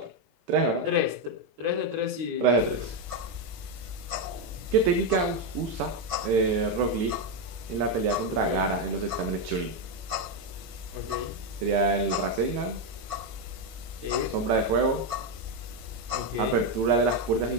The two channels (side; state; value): left; late; 18 ms